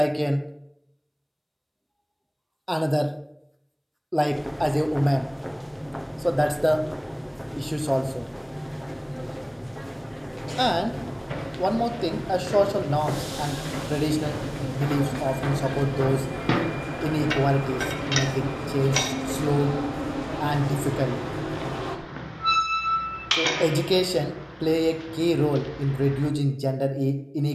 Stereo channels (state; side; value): identical; both; correlation 1.00